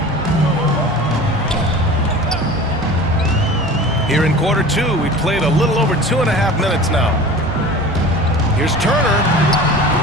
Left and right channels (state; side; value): normal; both; correlation 0.38